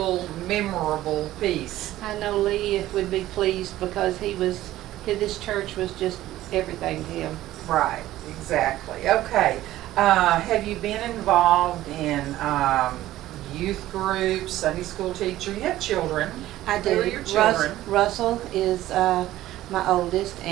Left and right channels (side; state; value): left; quieter; 14.9 dB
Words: memorable piece. I know Lee would be pleased because this church was just everything to him. Right, exactly. Okay. Have you been involved in youth groups, Sunday school teacher? You have children. I do. Who are your children? Russell is my oldest,